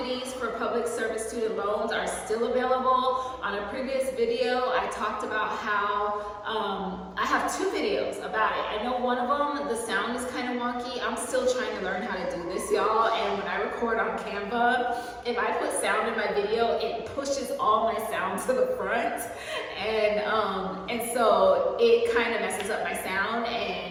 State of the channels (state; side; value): identical; both; correlation 1.00